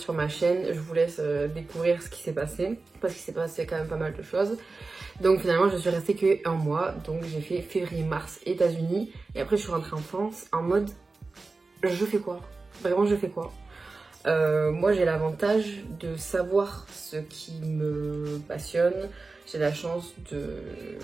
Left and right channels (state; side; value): quieter; left; 3.8 dB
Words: ma chaîne, je vous laisse découvrir ce qui s'est passé, parce qu'il s'est passé quand même pas mal de choses. Donc finalement, je suis restée que un mois. Donc j'ai fait février-mars États-Unis. Et après, je suis rentrée en France en mode, je fais quoi? Vraiment, je fais quoi? Moi j'ai l'avantage de savoir ce qui me passionne, j'ai la chance de